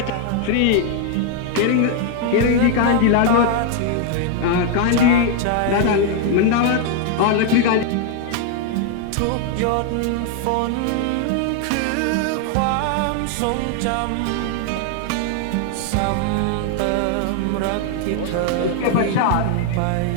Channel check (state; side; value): different; both; correlation 0.00